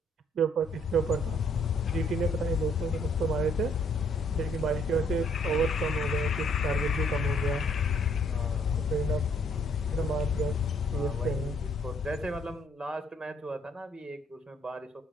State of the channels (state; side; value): normal; both; correlation 0.65